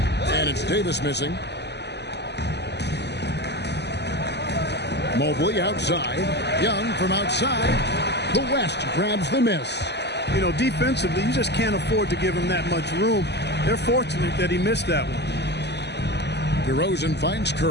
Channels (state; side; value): late; right; 0.50 ms